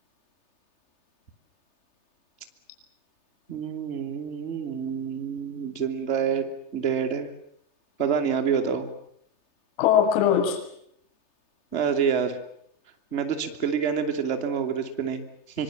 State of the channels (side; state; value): right; late; 3.3 ms